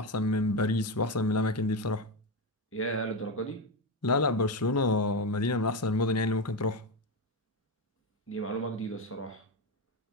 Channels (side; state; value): both; normal; correlation 0.13